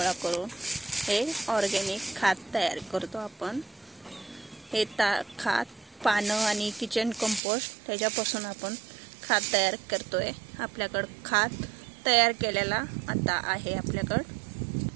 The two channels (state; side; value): drops out; left; at 7.4 s